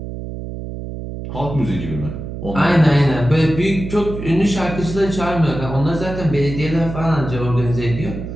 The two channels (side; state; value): right; noise; hum, 8 dB below the sound